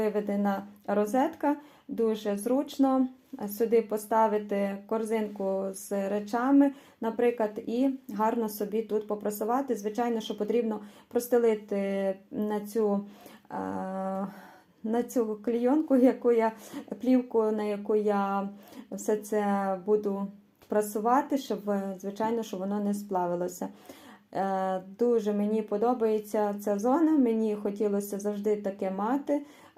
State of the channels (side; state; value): both; identical; correlation 1.00